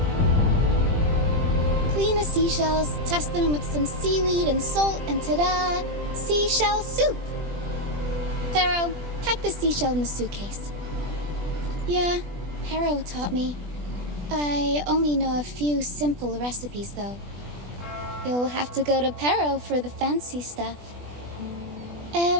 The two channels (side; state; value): left; late; 20 ms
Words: Clean the seashells, test them with some seaweed and salt, and ta-da! Seashell soup! Harrow, pack the seashell in the suitcase. Yeah, Harrow taught me. I only know a few simple recipes, though. You'll have to go to Perro for the fancy stuff.